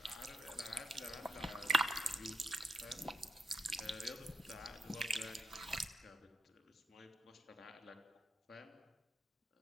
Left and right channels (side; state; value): both; normal; correlation 0.78